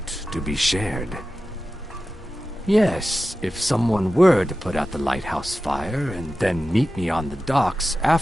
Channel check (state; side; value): normal; both; correlation 0.93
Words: to be shared. Yes, if someone were to put out the lighthouse fire and then meet me on the docks